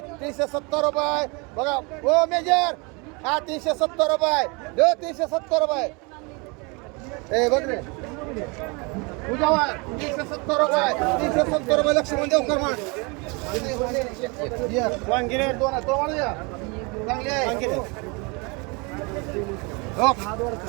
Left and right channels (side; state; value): left; quieter; 29.5 dB